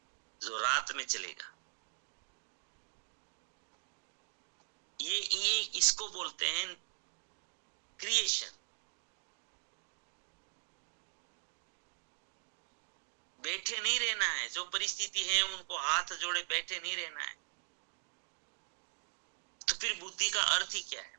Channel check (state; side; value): silent; left; digital silence